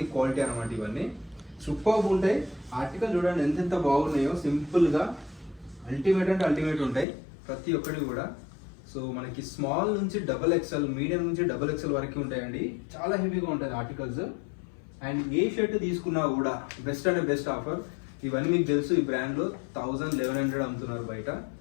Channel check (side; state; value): right; drops out; at 7.1 s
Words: క్వాలిటీ అనమాట ఇవన్నీ. సూపర్బ్ ఉంటాయి. ఆర్టికల్ చూడండి ఎంత బాగున్నాయో, సింపుల్గా అల్టిమేట్ అంటే అల్టిమేట్ ఉంటాయి ప్రతి ఒక్కటి కూడా. సో మనకి స్మాల్ నుంచి XXL, మీడియం నుంచి XXL వరకు ఉంటాయండి. చాలా హెవీగా ఉంటుంది ఆర్టికల్స్. అండ్ ఏ షర్ట్ తీసుకున్నా కూడా బెస్ట్ అంటే బెస్ట్ ఆఫర్. ఇవన్నీ మీకు తెలుసు, ఈ బ్రాండ్లో 1100 అమ్ముతున్నారు బయట.